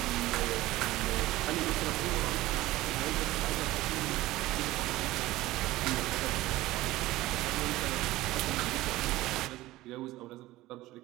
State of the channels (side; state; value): left; quieter; 17.4 dB